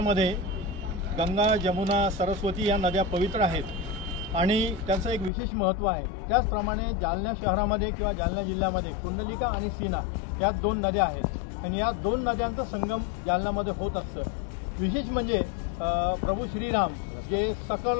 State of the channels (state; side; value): drops out; right; at 5.3 s